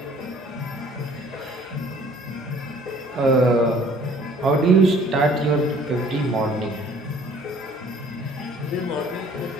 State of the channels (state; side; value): normal; both; correlation 0.55